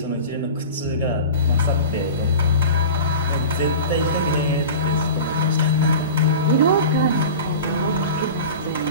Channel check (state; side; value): inverted; both; correlation -0.35